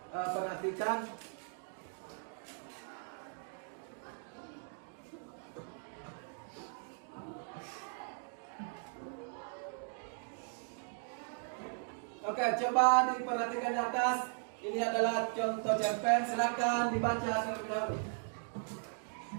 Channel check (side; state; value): left; silent; 53 dB below the other